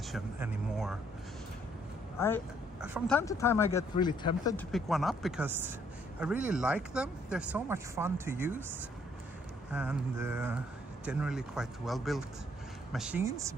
anymore. From time to time I get really tempted to pick one up because I really like them. They're so much fun to use, and generally quite well built machines,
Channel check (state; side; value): normal; both; correlation 0.67